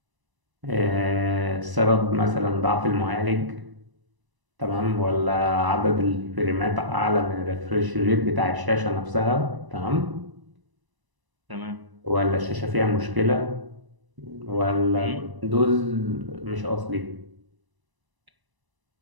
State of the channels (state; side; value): late; left; 1.0 ms